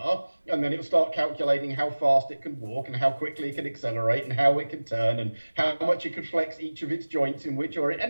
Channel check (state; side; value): inverted; both; correlation -1.00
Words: and then it'll start calculating how fast it can walk, and how quickly it can accelerate, and how it can turn, and how much it can flex each of its joints in which order,